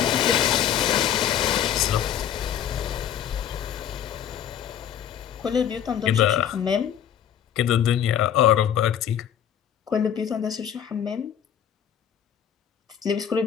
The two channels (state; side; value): quieter; right; 9.5 dB